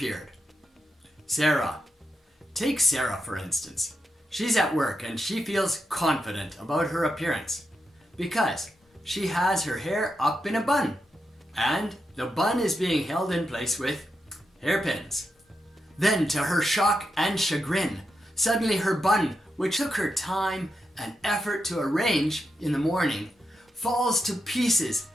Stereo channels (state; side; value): normal; both; correlation 0.86